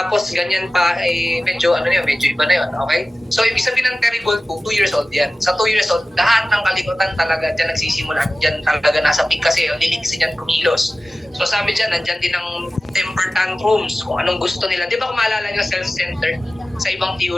ganyan pa, medyo medyo iba na yun, okay? So, ibig sabihin ng terrible 2 years old yan. Sa 2 years old, lahat ng kalikutan talaga dyan nagsisimula. Dyan talaga nasa peak kasi liligsi dyan kumilos. So, sabi dyan, nandyan din ang temper tantrums, kung anong gusto nila. Di ba kung maalala nyo, self-centered, sa ibang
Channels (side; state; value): both; normal; correlation 0.96